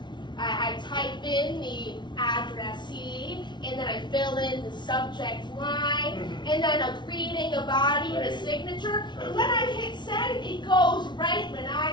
type in the addressee, and then I fill in the subject line, and then a greeting, a body, and a signature. And when I hit send, it goes right when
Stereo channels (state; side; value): late; right; 0.22 ms